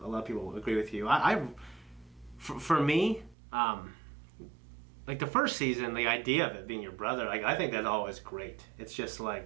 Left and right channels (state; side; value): drops out; left; at 3.4 s